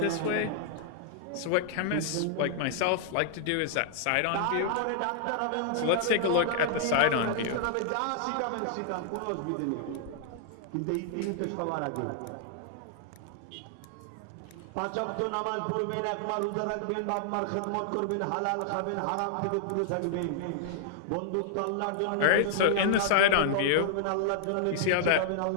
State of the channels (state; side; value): different; both; correlation -0.01